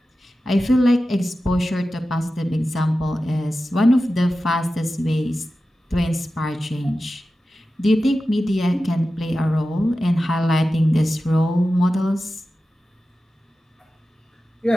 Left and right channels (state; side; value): normal; both; correlation 0.93